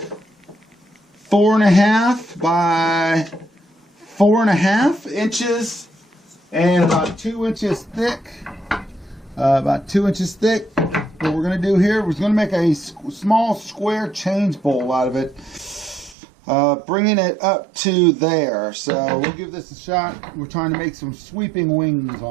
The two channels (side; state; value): left; drops out; at 16.2 s